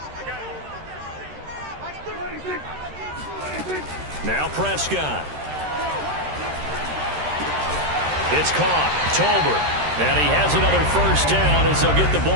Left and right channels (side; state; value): left; late; 13 ms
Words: Now Prescott. It's caught. Tolbert. And he has another 1st down as they'll get the